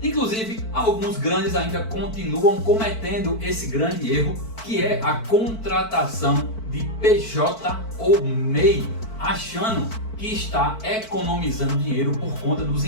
Inclusive, alguns grandes ainda continuam cometendo esse grande erro, que é a contratação de PJ ou MEI, achando que está economizando dinheiro por conta dos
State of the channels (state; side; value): late; right; 4.5 ms